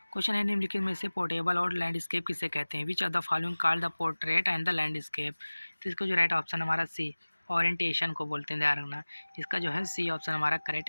निम्नलिखित में से पोर्टेबल और लैंडस्केप किसे कहते हैं? Which of the following called the portrait and the landscape. तो इसका जो राइट ऑप्शन हमारा सी, ओरिएंटेशन को बोलते हैं। ध्यान रखना। इसका जो है सी ऑप्शन हमारा करेक्ट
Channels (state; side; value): inverted; both; correlation -1.00